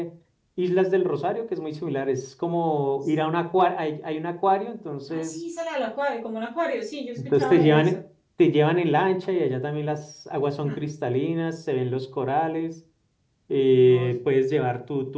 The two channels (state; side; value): identical; both; correlation 1.00